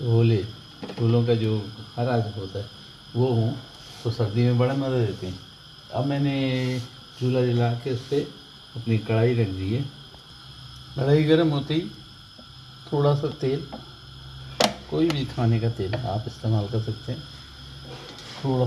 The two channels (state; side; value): identical; both; correlation 1.00